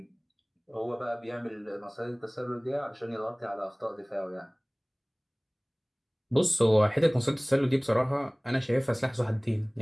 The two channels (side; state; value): both; identical; correlation 1.00